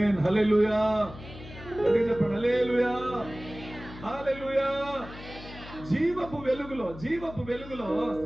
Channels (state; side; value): noise; left; hum, 15 dB below the sound